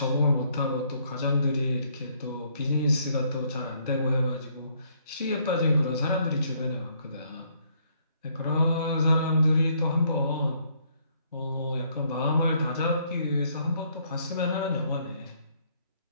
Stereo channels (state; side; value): inverted; both; correlation -0.68